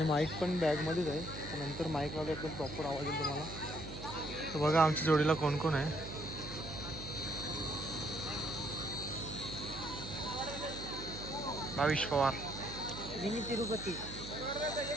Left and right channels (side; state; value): right; noise; hum, 11 dB below the sound